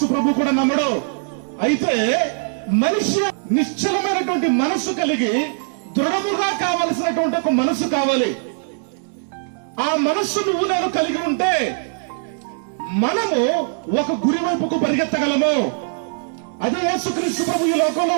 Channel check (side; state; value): left; silent; 64 dB below the other